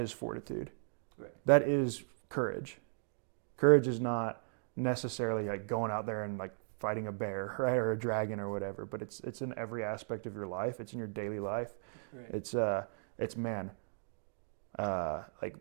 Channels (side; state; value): left; silent; digital silence